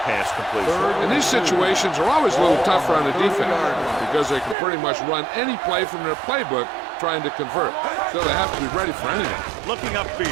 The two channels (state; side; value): drops out; left; at 4.5 s